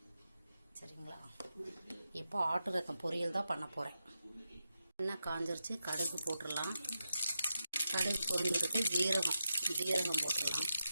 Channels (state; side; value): inverted; both; correlation -0.88